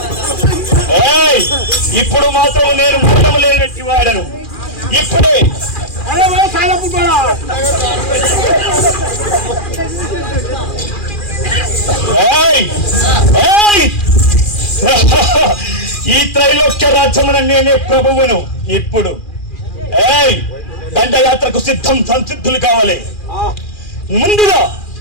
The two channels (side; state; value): right; late; 2.4 ms